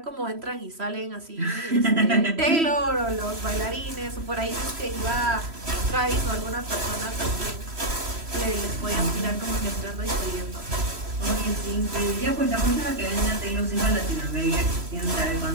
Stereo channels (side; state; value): left; late; 3.1 ms